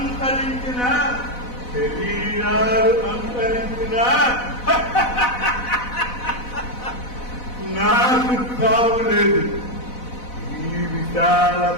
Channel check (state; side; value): late; right; 4.0 ms